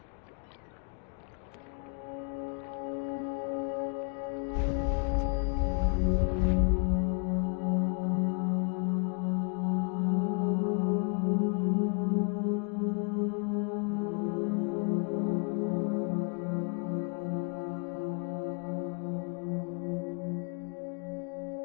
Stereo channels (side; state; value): right; quieter; 38.4 dB